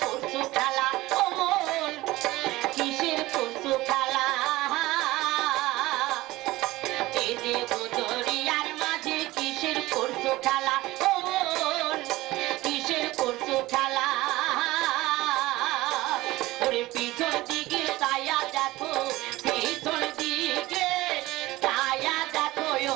করছো খেলা ও মন কিসের করছো খেলা এ দেখো দরিয়ার মাঝে কিসের করছো খেলা ও মন কিসের করছো খেলা ওরে পিছন দিকে তায়া দেখো পিছন দিকে তায়া দেখো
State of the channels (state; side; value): quieter; left; 18.6 dB